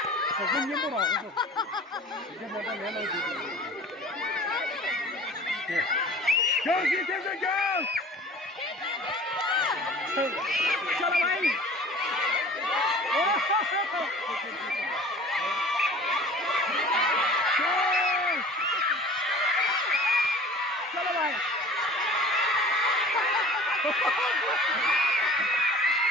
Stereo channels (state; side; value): normal; both; correlation 0.44